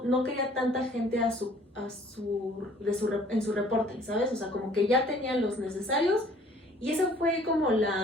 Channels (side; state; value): both; normal; correlation 0.56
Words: quería tanta gente en su reporte, ¿sabes? O sea, como que ya tenían los necesarios y esa fue como